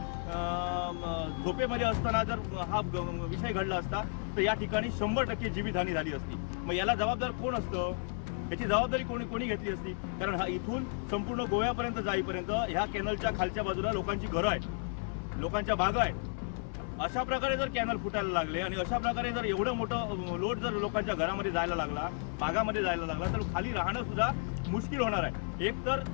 झोपेमध्ये असताना जर हा विषय घडला असता तर या ठिकाणी 100% जीवितहानी झाली असती. मग याला जबाबदार कोण असतं? याची जबाबदारी कोणी घेतली असती? कारण हा इथून संपूर्ण गोव्यापर्यंत जाईपर्यंत ह्या कॅनलच्या खालच्या बाजूला लोकांची घरं आहेत, लोकांच्या बागा आहेत. अशा प्रकारे जर कॅनल फुटायला लागले आणि अशा प्रकारे जर एवढं मोठं लोड जर लोकांच्या घरामध्ये जायला लागला, बागामध्ये जायला लागला, तर खाली राहणं सुद्धा मुश्किल होणार आहे. एक तर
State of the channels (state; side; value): silent; right; 56 dB below the other